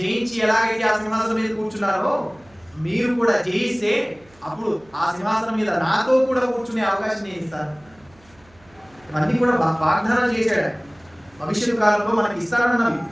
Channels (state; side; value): noise; right; hum, 29 dB below the sound